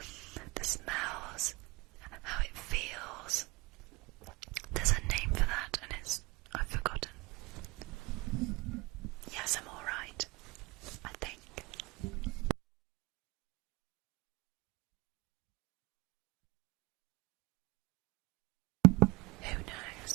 the smells, how it feels. There's a name for that, and I've forgotten. Yes, I'm alright, I think. Who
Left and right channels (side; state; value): left; quieter; 24.3 dB